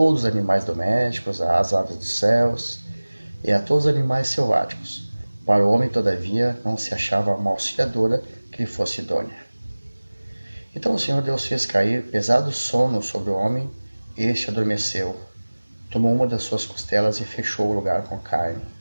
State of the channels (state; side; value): inverted; both; correlation -1.00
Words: os animais domésticos, às aves dos céus e a todos os animais selváticos. Para o homem, todavia, não se achava uma auxiliadora que lhe fosse idônea. Então o Senhor Deus fez cair pesado sono sobre o homem, e este adormeceu. Tomou uma das suas costelas e fechou o lugar com carne.